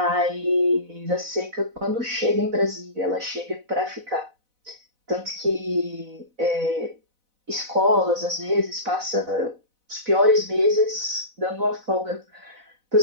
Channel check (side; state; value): left; late; 4.0 ms